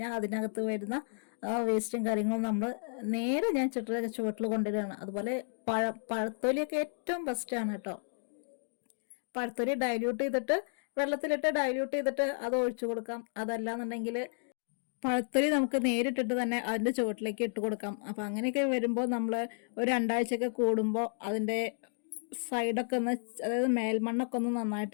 അതിനകത്ത് വരുന്ന വേസ്റ്റും കാര്യങ്ങളും നമ്മൾ നേരെ ഞാൻ ചെടിയുടെ ചുവട്ടിൽ കൊണ്ടുവരികയാണ്. അതുപോലെ പഴത്തൊലിയൊക്കെ ഏറ്റവും ബെസ്റ്റാണ് കേട്ടോ. പഴത്തൊലി ഡൈല്യൂട്ട് ചെയ്തിട്ട് വെള്ളത്തിലിട്ട് ഡൈല്യൂട്ട് ചെയ്തിട്ട് അത് ഒഴിച്ചു കൊടുക്കാം. അതല്ലാന്നുണ്ടെങ്കിൽ പഴത്തൊലി നമുക്ക് നേരിട്ടിട്ട് തന്നെ അതിൻ്റെ ചുവട്ടിലേക്ക് ഇട്ട് കൊടുക്കാം. അപ്പോൾ അങ്ങനെയൊക്കെ വരുമ്പോൾ നമ്മൾ ഒരു 2 ആഴ്ചയൊക്കെ കൂടുമ്പോൾ അതിൻ്റെ സൈഡൊക്കെ ഒന്ന്, അതായത് മേൽമണ്ണൊക്കെ ഒന്ന്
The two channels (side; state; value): right; silent; digital silence